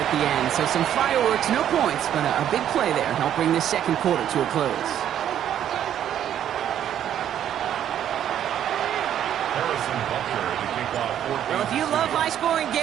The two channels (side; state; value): left; quieter; 10.3 dB